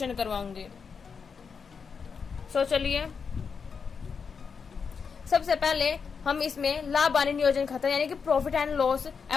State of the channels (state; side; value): quieter; right; 5.8 dB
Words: करवाऊंगी। चलिए सबसे पहले हम इसमें लाभ हानि नियोजन खाता यानी कि profit and loss